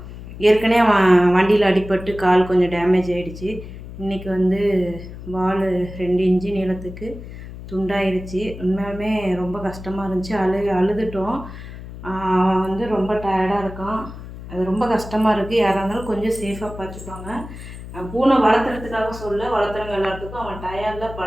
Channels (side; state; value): left; noise; hum, 13 dB below the sound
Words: ஏற்கனவே அவன் வண்டியில் அடிபட்டு கால் கொஞ்சம் டேமேஜ் ஆகிடுச்சு. இன்றைக்கி வந்து வால் 2 இன்ச்சு நீளத்துக்கு துண்டாயிருச்சு. உண்மையாலுமே ரொம்ப கஷ்டமாக இருந்துச்சு. அழுதுட்டோம். அவன் வந்து ரொம்ப டயர்டாக இருக்கான். அது ரொம்ப கஷ்டமாக இருக்குது. யாராக இருந்தாலும் கொஞ்சம் சேஃபாக பார்த்துப்பாங்க. பூனை வளர்த்துறதுக்காக வளர்த்துறவங்க எல்லாத்துக்கும் அவன் டயர்டில்